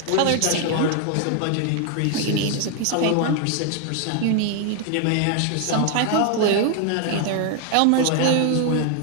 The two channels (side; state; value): both; different; correlation 0.01